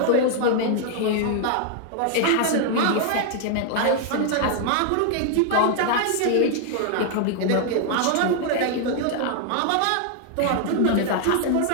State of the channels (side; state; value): both; different; correlation 0.00